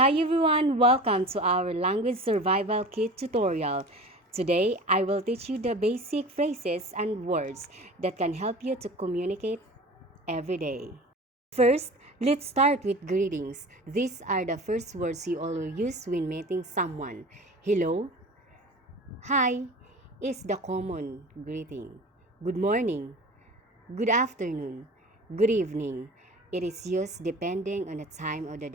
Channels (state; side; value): normal; both; correlation 0.37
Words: everyone, welcome to our language survival kit tutorial. Today, I will teach you the basic phrases and words that can help you to communicate every day. First, let's start with greetings. These are the first words you always use when meeting someone. Hello, hi is the common greeting. Good morning, good afternoon, good evening. It is used depending on the time of the